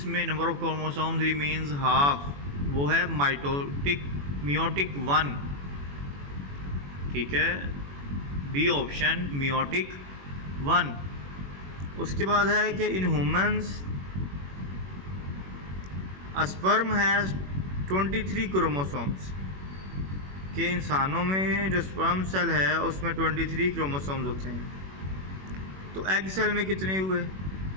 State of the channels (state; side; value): late; left; 21 ms